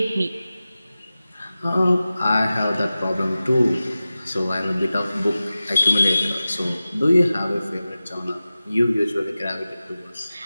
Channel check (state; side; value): inverted; both; correlation -0.95